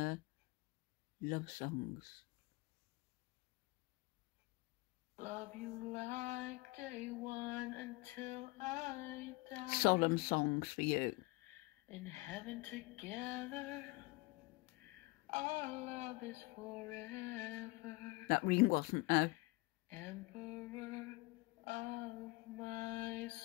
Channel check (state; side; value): quieter; right; 24.0 dB